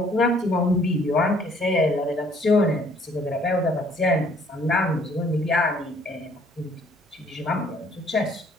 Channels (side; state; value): both; normal; correlation 0.60